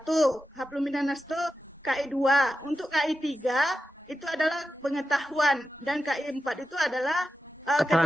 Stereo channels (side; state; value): both; normal; correlation 0.91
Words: hablum minannas itu KI 2. Untuk KI 3 itu adalah pengetahuan, dan KI 4 itu adalah